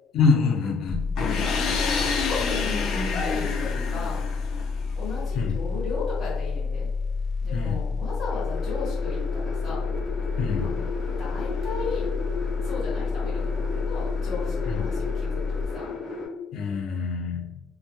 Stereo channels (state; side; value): quieter; right; 4.3 dB